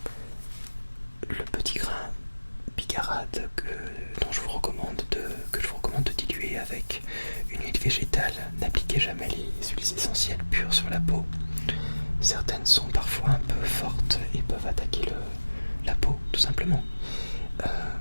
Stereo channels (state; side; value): inverted; both; correlation -1.00